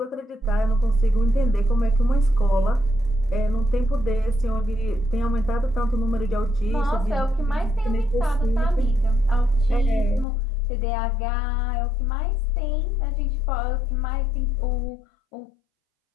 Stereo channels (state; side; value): drops out; right; at 10.2 s